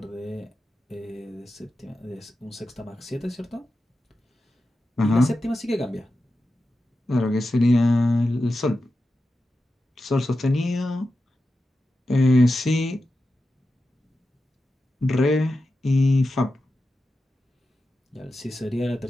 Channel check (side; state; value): both; normal; correlation 0.91